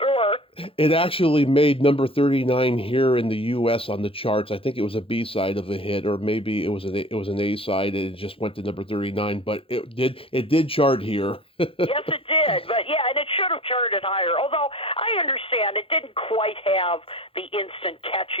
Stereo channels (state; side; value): late; right; 0.27 ms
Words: It actually made number 39 here in the U.S. on the charts. I think it was a B-side of a hit, or maybe it was an A-side, and it just went to number 39. But it did chart here. Yes, it did. But yeah, and it should have charted higher. Although I understand it didn't quite have the instant